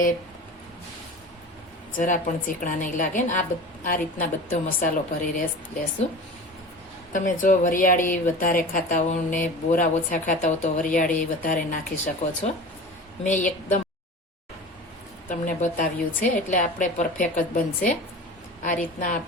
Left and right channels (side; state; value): both; normal; correlation 0.35